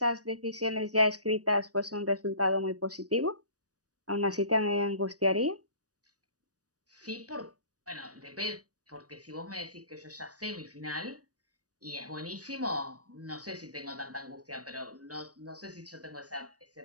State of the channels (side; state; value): left; late; 0.67 ms